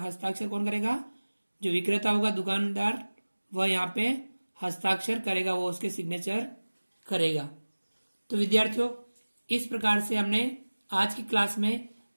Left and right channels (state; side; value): inverted; both; correlation -1.00